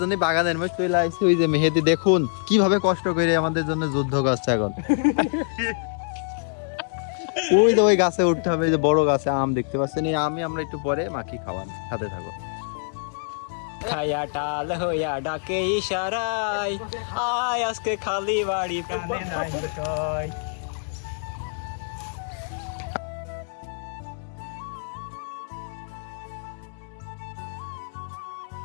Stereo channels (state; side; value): silent; right; digital silence